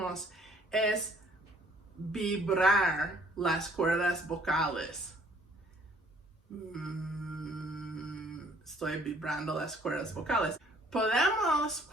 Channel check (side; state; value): both; normal; correlation 0.59